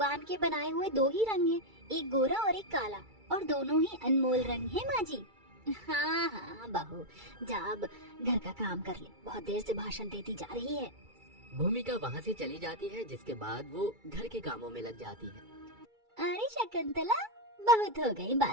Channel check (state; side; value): late; left; 2.3 ms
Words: के बनाए हुए दो ही रंग हैं, एक गोरा और एक काला, और दोनों ही अनमोल रंग हैं माँ जी। हाँ हाँ बहू, जा अब घर का काम कर ले, बहुत देर से भाषण देती जा रही है। भूमिका वहाँ से चली जाती है, जिसके बाद वो घर के कामों में लग जाती है। अरे शकुंतला, बहुत हो गई